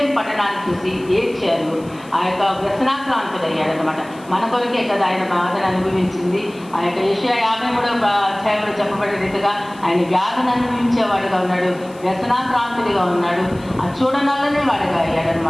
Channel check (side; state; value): left; noise; hiss, 25 dB below the sound